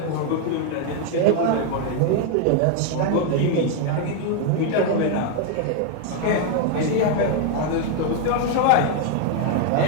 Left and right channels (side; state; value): both; different; correlation 0.00